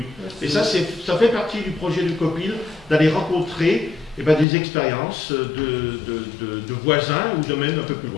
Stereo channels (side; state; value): right; drops out; at 4.5 s